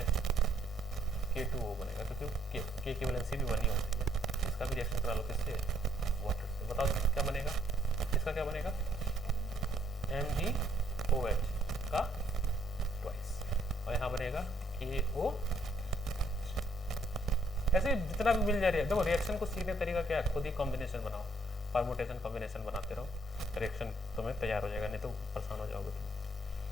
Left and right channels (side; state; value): both; normal; correlation 0.69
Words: K2O बनेगा क्योंकि K की वैलेंसी भी 1 ही होती है। इसका भी रिएक्शन करा लो किससे, वाटर से। बताओ क्या बनेगा, इसका क्या बनेगा, MgOH का ट्वाइस, और यहाँ बनेगा KO। ऐसे जितना भी मिल जा रही है, देखो रिएक्शन को सीखने तरीका क्या है, खुद ही कॉम्बिनेशन बनाओ, परमुटेशन कॉम्बिनेशन बनाते रहो, रिएक्शन तुम्हें तैयार हो जाएगा, नहीं तो परेशान हो जाओगे तुम।